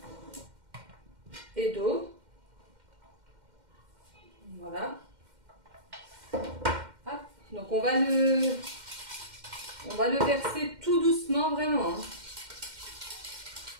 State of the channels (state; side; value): late; left; 2.1 ms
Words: d'eau. Voilà. Hop. Donc on va le verser tout doucement vraiment.